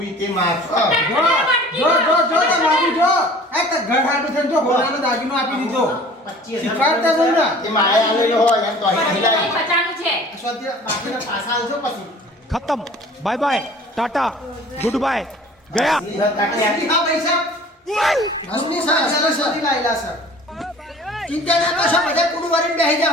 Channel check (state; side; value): normal; both; correlation 0.46